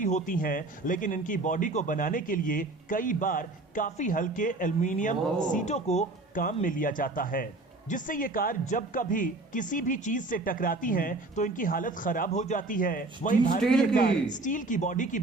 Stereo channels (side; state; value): left; quieter; 3.1 dB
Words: होती हैं, लेकिन इनकी बॉडी को बनाने के लिए कई बार काफी हल्के एल्युमिनियम सीटों को काम में लिया जाता है, जिससे ये कार जब कभी किसी भी चीज से टकराती हैं तो इनकी हालत खराब हो जाती है। वहीं भारतीय कार स्टील की बॉडी की